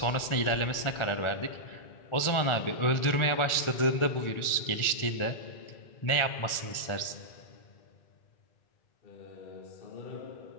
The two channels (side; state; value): right; late; 1.4 ms